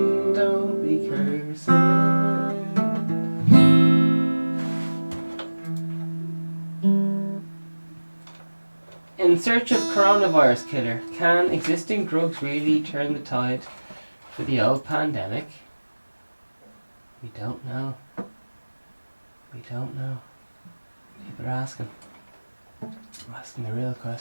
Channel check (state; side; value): inverted; both; correlation -1.00